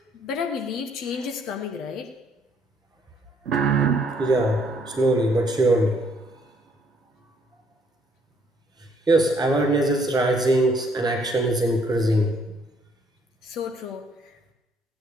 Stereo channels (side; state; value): both; normal; correlation 0.66